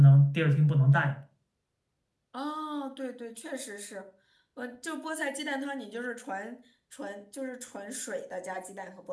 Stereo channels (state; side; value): identical; both; correlation 1.00